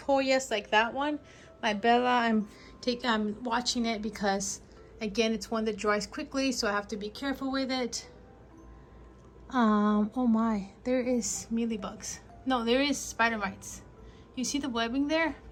Hoyas like that one. My Bella, I'm watching it because, again, it's one that dries quickly, so I have to be careful with it. Oh my, there is mealybugs. No, there is spider mites. You see the webbing there?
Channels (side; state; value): both; identical; correlation 1.00